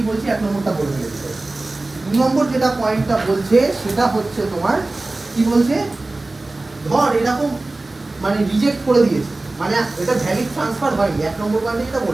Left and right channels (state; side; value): quieter; left; 3.0 dB